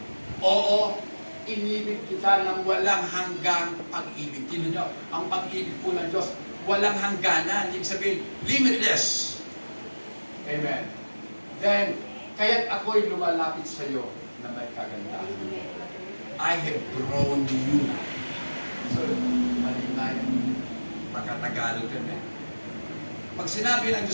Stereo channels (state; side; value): inverted; both; correlation -1.00